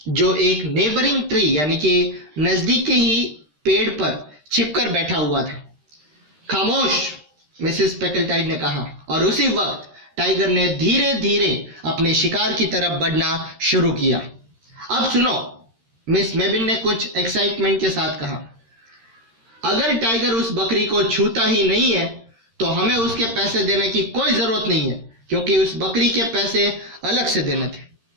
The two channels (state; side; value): late; left; 13 ms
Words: जो एक नेबरिंग ट्री यानी कि नजदीक के ही पेड़ पर छिपकर बैठा हुआ था। खामोश, मिसेस पेकलटाइड ने कहा, और उसी वक्त टाइगर ने धीरे धीरे अपने शिकार की तरफ बढ़ना शुरू किया। अब सुनो, मिस मेबिन ने कुछ एक्साइटमेंट के साथ कहा, अगर टाइगर उस बकरी को छूता ही नहीं है तो हमें उसके पैसे देने की कोई जरूरत नहीं है, क्योंकि उस बकरी के पैसे अलग से देने थे।